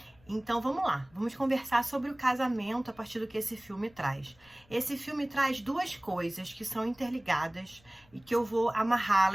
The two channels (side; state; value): left; noise; rumble, 30 dB below the sound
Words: Então vamos lá, vamos conversar sobre o casamento a partir do que esse filme traz. Esse filme traz duas coisas que são interligadas e que eu vou